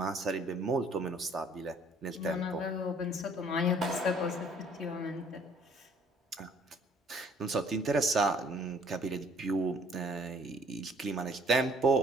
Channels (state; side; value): normal; both; correlation 0.59